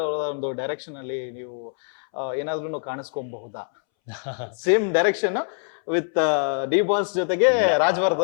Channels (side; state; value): right; silent; 62 dB below the other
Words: ಅವರ ಒಂದು ಡೈರೆಕ್ಷನ್ ಅಲ್ಲಿ ನೀವು ಏನಾದ್ರೂ ಕಾಣಿಸ್ಕೊಬಹುದಾ? Same direction with D boss ಜೊತೆಗೆ